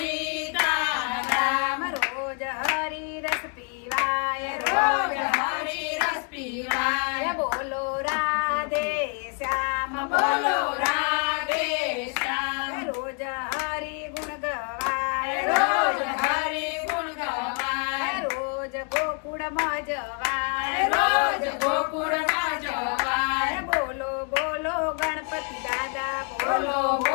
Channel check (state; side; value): quieter; right; 38.7 dB